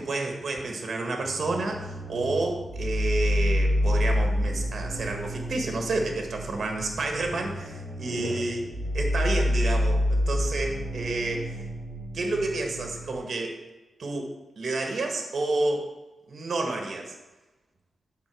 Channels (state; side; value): normal; both; correlation 0.89